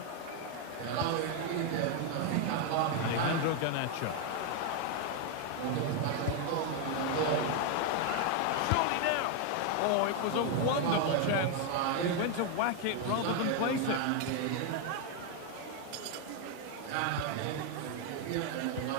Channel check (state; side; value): different; both; correlation 0.01